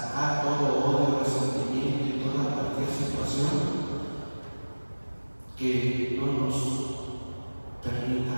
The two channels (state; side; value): inverted; both; correlation -1.00